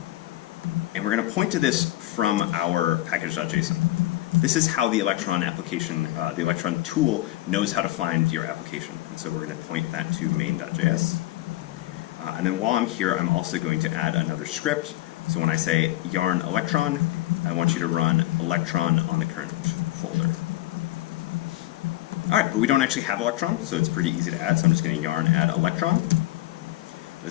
And we're going to point to this from our package.json. this is how the Electron application, the Electron tool knows how to find your application. And so we're going to point that to main.js. And then while I'm here, I'm also going to add another script. So when I say yarn Electron, I want you to run Electron on the current folder. All right, but we don't actually have Electron, so it's pretty easy to add. So I'm just going to yarn add Electron.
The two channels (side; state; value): right; quieter; 16.3 dB